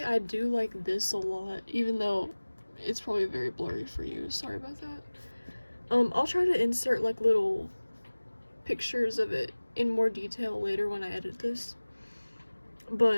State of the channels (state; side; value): inverted; both; correlation -1.00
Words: I do like this a lot, even though it's probably very blurry for you. Sorry about that. I'll try to insert like little pictures of it in more detail later when I edit this.